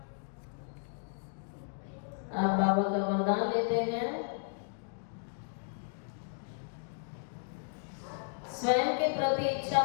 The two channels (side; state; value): right; silent; digital silence